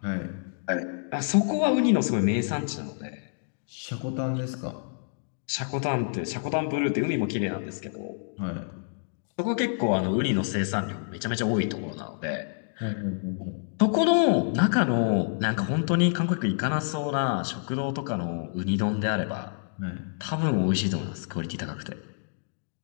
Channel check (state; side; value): silent; right; digital silence